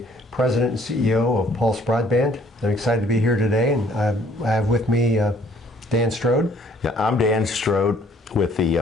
President and CEO of Pulse Broadband. I'm excited to be here today, and I have with me Dan Strode. Yeah, I'm Dan Strode with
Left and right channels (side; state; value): both; normal; correlation 0.60